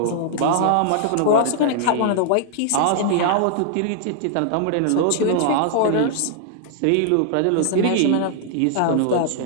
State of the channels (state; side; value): different; both; correlation -0.01